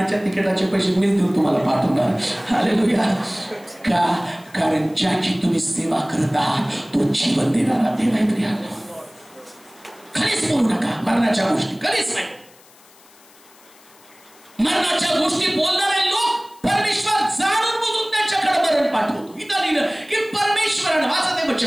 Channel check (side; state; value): left; noise; hiss, 27 dB below the sound